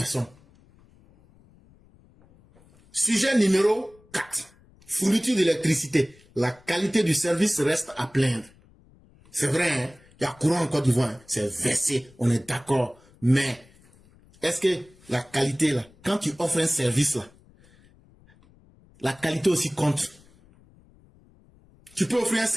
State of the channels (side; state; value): left; noise; rumble, 29 dB below the sound